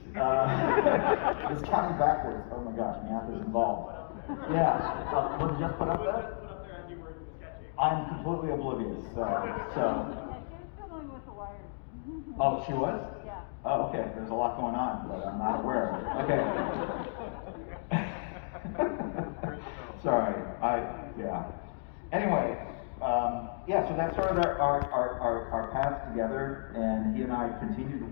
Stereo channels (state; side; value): silent; right; digital silence